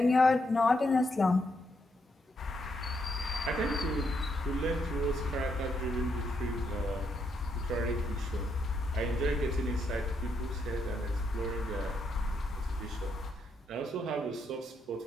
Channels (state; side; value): normal; both; correlation 0.78